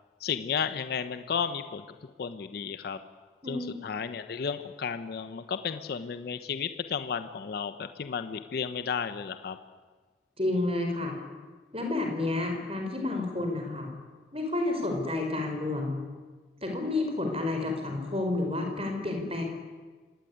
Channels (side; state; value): right; quieter; 3.4 dB